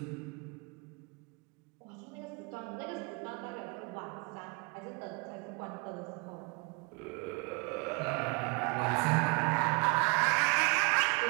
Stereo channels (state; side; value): quieter; left; 29.6 dB